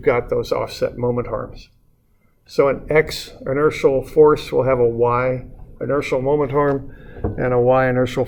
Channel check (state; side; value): identical; both; correlation 1.00